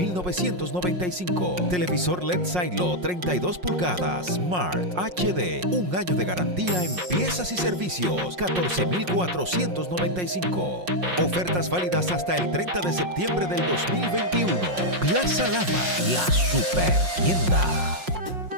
Televisor LED Silo, 32 pulgadas, Smart HD. 1 año de garantía en piezas y servicios, 14,495. Ofertas válidas hasta el 30 de septiembre del 2021. Plaza Lama, la super tienda.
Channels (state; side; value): late; left; 5.5 ms